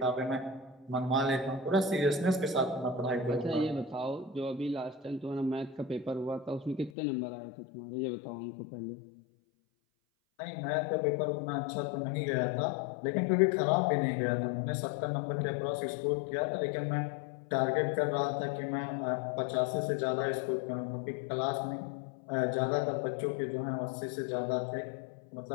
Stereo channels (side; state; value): right; drops out; at 6.9 s